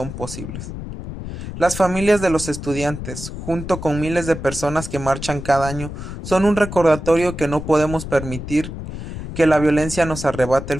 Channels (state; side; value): noise; left; rumble, 9 dB below the sound